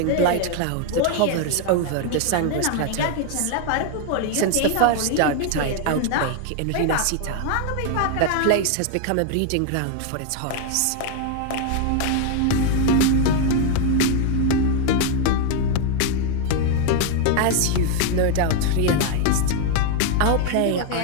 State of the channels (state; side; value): different; both; correlation 0.00